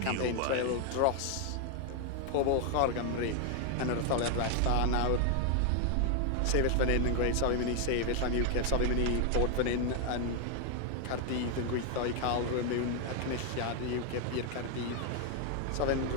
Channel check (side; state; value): both; different; correlation 0.00